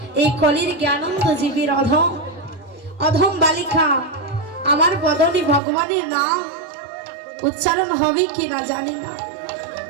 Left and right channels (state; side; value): drops out; left; at 5.6 s